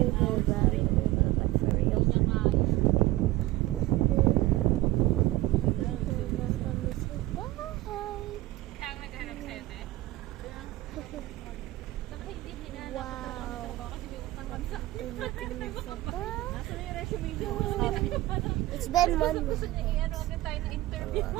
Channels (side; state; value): left; quieter; 17.5 dB